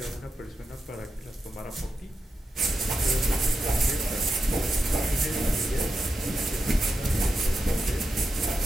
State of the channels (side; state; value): both; normal; correlation 0.87